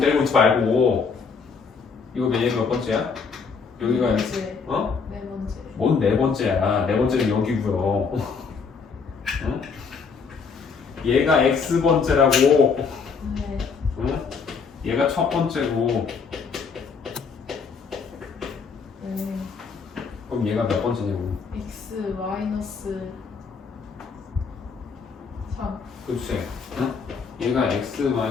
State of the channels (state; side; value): quieter; right; 5.4 dB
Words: 있지 말고. 이거 얘 몇 번째야? 여기가 네 번째. 어? 네 번째. 뭔 4번째야? 4번째는 여기고요. 응? 얘가 X번째라고. 네. 응? 얘가 첫 번째고. 네. 그럼 얘가 몇 번째냐고. X 마이너스 3. 그치? 응? 얘가 X